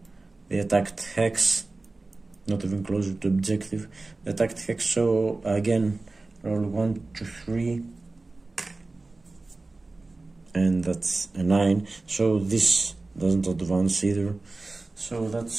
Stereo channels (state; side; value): quieter; left; 3.3 dB